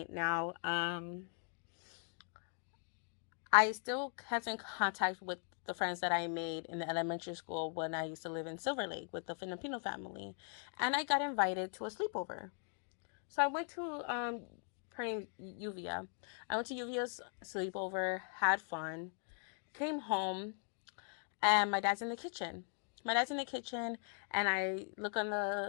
now. I still kept in contact with the friends that I made in the elementary school when I used to live in Silver Lake with the Filipino family. And I got invited to a sleepover. So I went to her name Yuvia. I went to Yuvia's sleepover, had fun, came home, and my dad's in the kitchen. My dad's in the kitchen, and I look on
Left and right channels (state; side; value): silent; right; 51 dB below the other